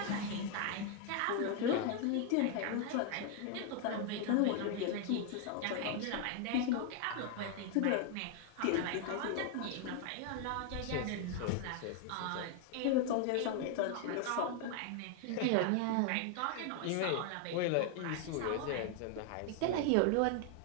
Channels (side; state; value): both; different; correlation 0.00